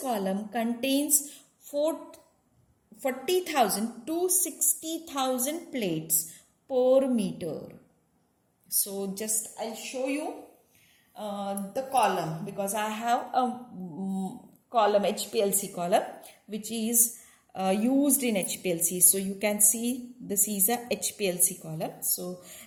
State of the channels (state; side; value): identical; both; correlation 1.00